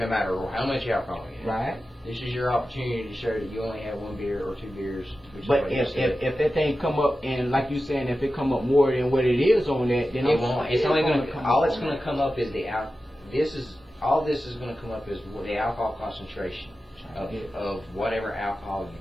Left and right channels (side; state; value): both; normal; correlation 0.93